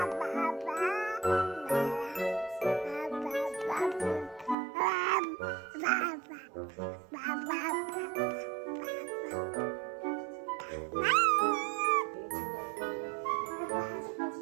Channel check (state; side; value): drops out; left; at 4.5 s